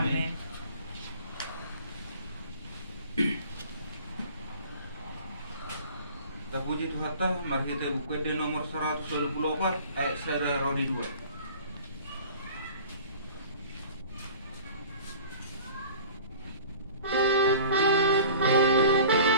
Terpuji Tuhan ta, mari kita buka di nomor 124 ayat 1 Rodi 2.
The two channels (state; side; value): inverted; both; correlation -0.44